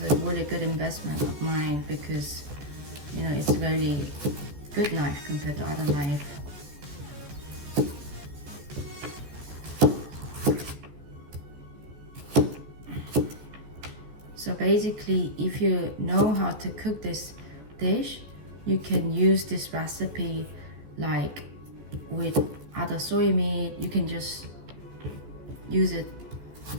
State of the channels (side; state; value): left; late; 14 ms